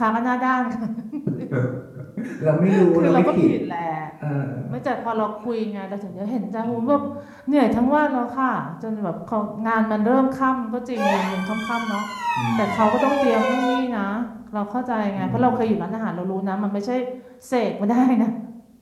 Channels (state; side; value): identical; both; correlation 1.00